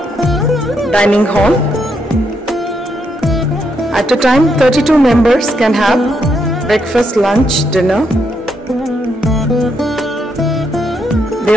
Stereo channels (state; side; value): normal; both; correlation 0.78